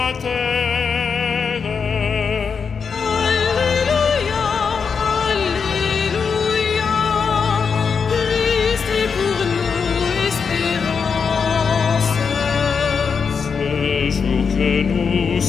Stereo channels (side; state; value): right; quieter; 5.8 dB